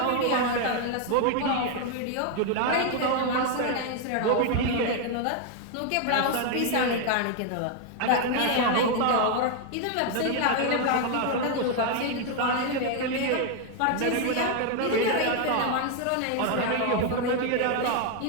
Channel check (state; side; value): different; both; correlation 0.01